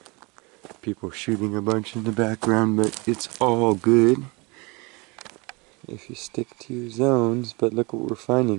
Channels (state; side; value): quieter; left; 27.5 dB